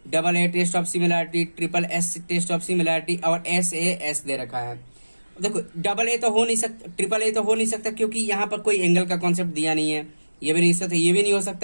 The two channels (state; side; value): inverted; both; correlation -1.00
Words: double A test of similarity, triple S test of similarity, और एस ए एस दे रखा है। देखो डबल ए तो हो नहीं सकता, ट्रिपल ए तो हो नहीं सकता, क्योंकि यहाँ पर कोई एंगल का कॉन्सेप्ट दिया नहीं है। ये भी नहीं हो सकता, ये भी नहीं हो